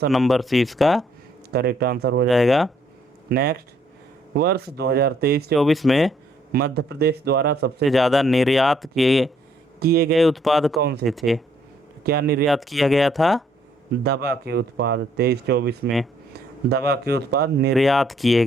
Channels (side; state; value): both; normal; correlation 0.67